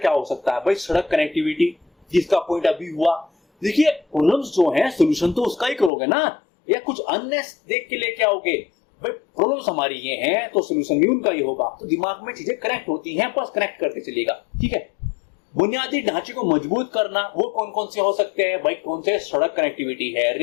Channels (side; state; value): right; drops out; at 5.9 s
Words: हो सकता है भाई? सड़क कनेक्टिविटी, जिसका पॉइंट अभी हुआ। देखिए, प्रॉब्लम्स जो हैं सोल्यूशन तो उसका ही करोगे ना, या कुछ अन्य देख के लेके आओगे? भाई प्रॉब्लम्स हमारी ये हैं तो सोल्यूशन भी उनका ही होगा। तो दिमाग में चीजें कनेक्ट होती हैं, बस कनेक्ट करते चलिएगा, ठीक है। बुनियादी ढांचे को मजबूत करना, वो कौन कौन से हो सकते हैं भाई? कौन से? सड़क कनेक्टिविटी है,